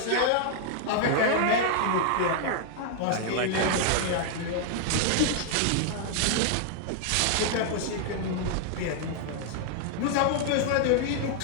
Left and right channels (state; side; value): different; both; correlation 0.00